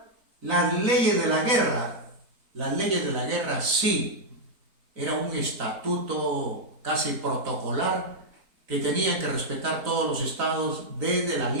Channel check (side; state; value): left; late; 4.0 ms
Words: las leyes de la guerra. Las leyes de la guerra sí, era un estatuto casi protocolar que tenían que respetar todos los estados desde la